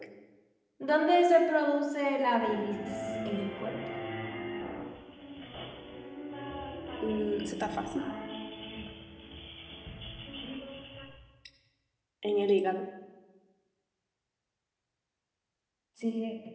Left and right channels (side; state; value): both; identical; correlation 1.00